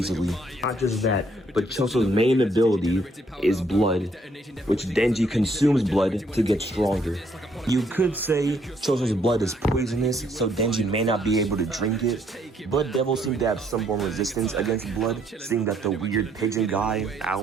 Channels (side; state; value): both; normal; correlation 0.68